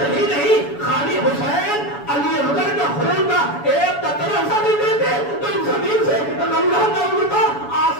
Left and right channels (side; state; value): right; late; 7.1 ms